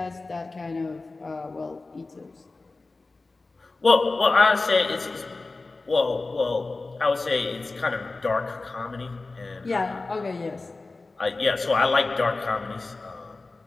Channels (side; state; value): right; quieter; 3.5 dB